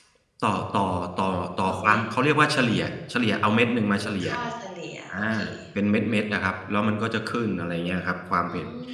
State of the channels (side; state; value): both; identical; correlation 1.00